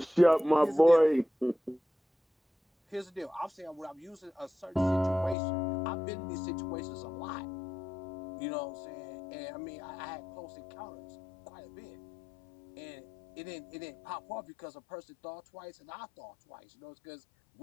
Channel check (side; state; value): right; drops out; at 5.4 s